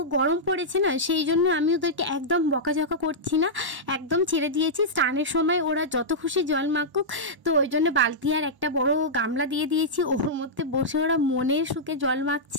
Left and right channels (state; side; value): late; left; 1.1 ms